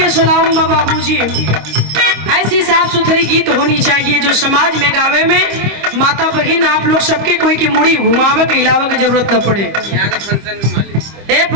सलाम बाबूजी। ऐसी साफ सुथरी गीत होनी चाहिए जो समाज में गावे में माता बहन आप लोग सबके कोई की मुड़ी घुमावे के हिलावे की जरूरत न पड़े।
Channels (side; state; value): left; late; 25 ms